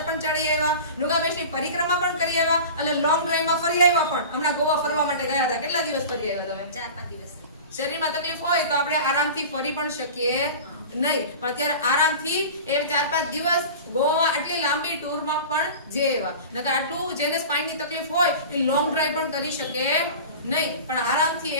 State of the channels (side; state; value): both; inverted; correlation -0.35